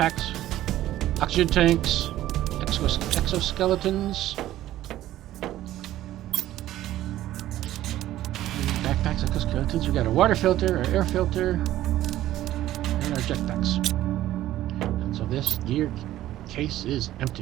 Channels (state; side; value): quieter; left; 14.0 dB